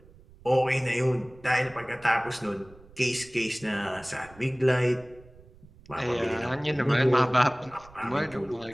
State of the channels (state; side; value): noise; right; rumble, 23 dB below the sound